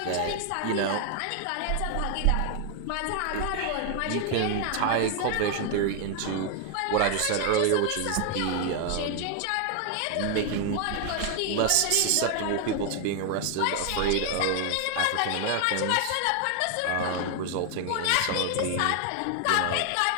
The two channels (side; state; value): both; different; correlation 0.00